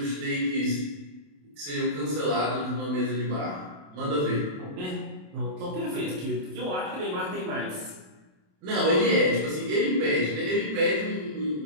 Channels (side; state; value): left; late; 27 ms